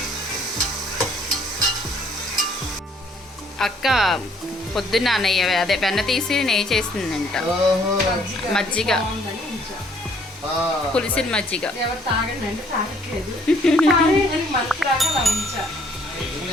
అక్క పొద్దున్న నెయ్యి అదే వెన్న తీసి నెయ్యి చేసిందంట. మజ్జిగ, పులిసిన మజ్జిగ. ఎవరు తాగండి అంటే తాగట్లేదు. మనసు రాగా అలా ఉంచా.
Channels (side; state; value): both; normal; correlation 0.63